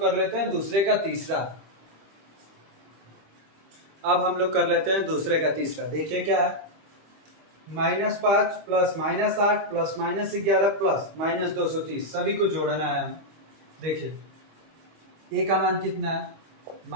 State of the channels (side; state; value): left; late; 25 ms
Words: कर लेते हैं दूसरे का तीसरा। देखिए क्या है, -5 प्लस -8 प्लस -11 प्लस -230 सभी को जोड़ना है हमें। देखिए ए का मान कितना है,